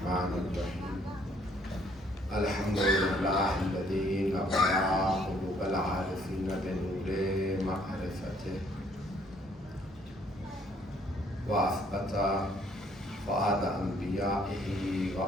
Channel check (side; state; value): both; normal; correlation 0.64